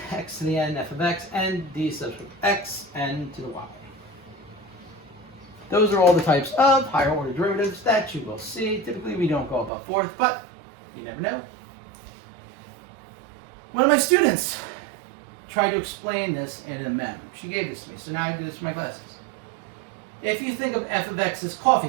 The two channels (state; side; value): drops out; left; at 9.7 s